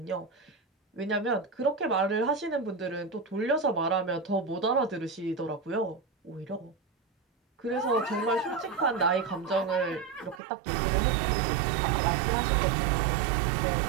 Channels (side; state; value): left; drops out; at 10.4 s